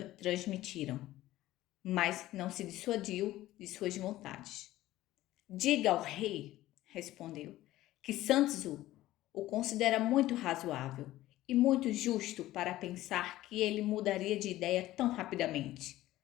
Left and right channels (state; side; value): quieter; right; 15.6 dB